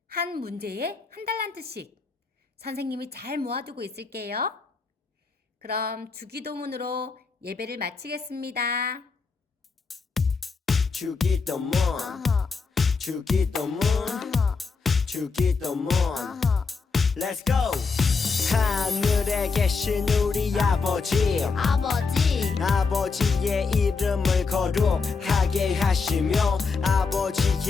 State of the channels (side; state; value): right; quieter; 4.7 dB